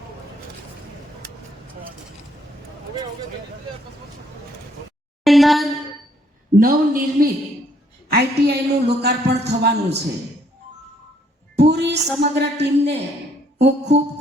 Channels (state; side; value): normal; both; correlation 0.67